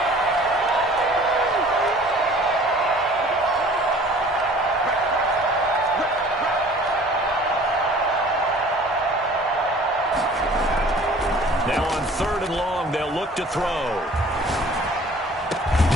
Now on 3rd and long, they'll look to throw.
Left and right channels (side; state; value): both; normal; correlation 0.49